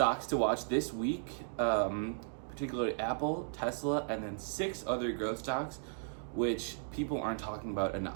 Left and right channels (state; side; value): silent; left; digital silence